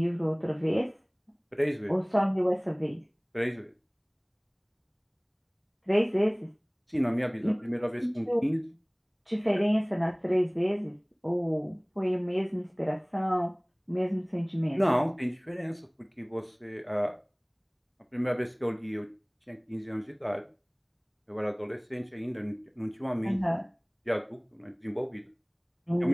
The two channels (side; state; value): both; identical; correlation 1.00